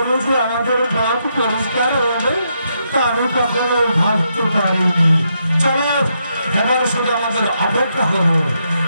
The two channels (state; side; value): inverted; both; correlation -0.79